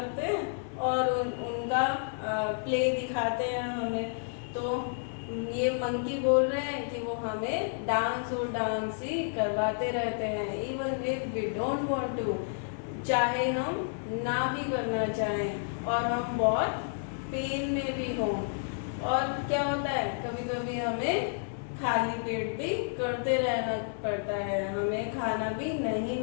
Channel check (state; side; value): silent; right; 57 dB below the other